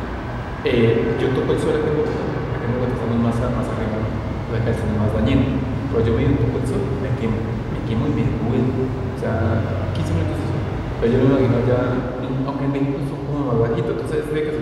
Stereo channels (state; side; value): identical; both; correlation 1.00